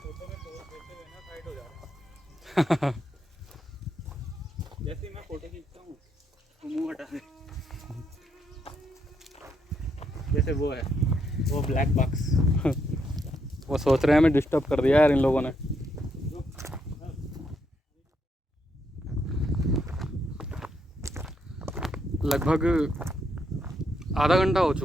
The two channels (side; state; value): both; normal; correlation 0.77